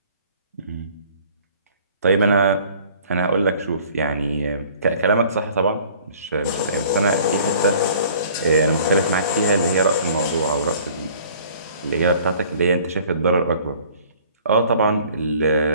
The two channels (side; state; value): both; inverted; correlation -0.52